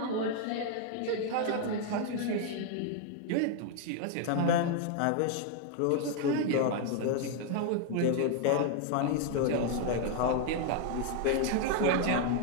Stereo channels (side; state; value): both; different; correlation 0.00